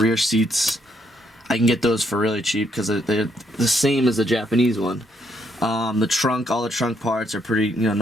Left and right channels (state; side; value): normal; both; correlation 0.73